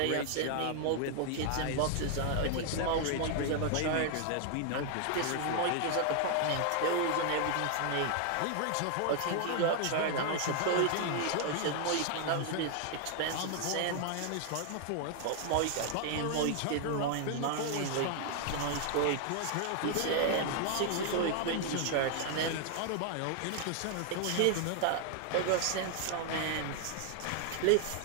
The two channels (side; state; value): both; different; correlation 0.00